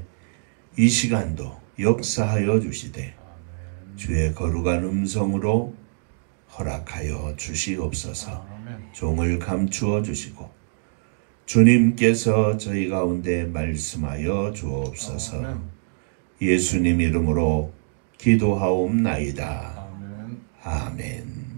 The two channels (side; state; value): left; silent; digital silence